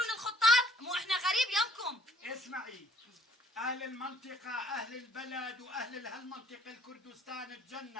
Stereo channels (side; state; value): both; normal; correlation 0.59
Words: الخطاب. مو احنا غريب يمكم. اسمعي، أهل المنطقة أهل البلد وأهل هالمنطقة الكردستان